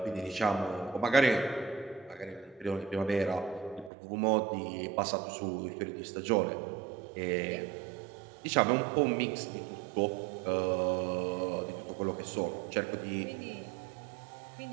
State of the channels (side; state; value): left; drops out; at 3.9 s